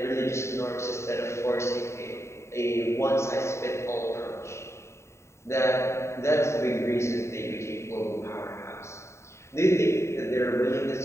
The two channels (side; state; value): right; late; 0.13 ms